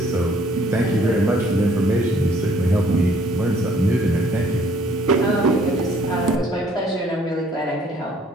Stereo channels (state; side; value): normal; both; correlation 0.61